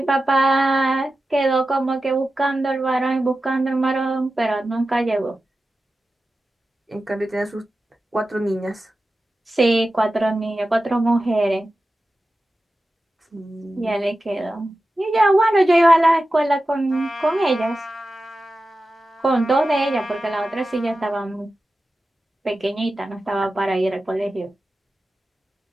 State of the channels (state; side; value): normal; both; correlation 0.93